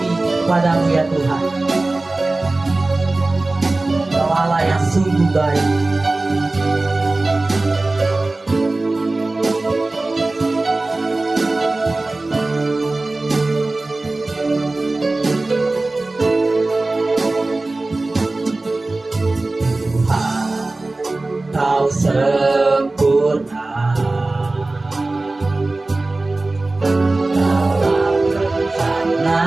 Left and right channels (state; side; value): quieter; left; 3.1 dB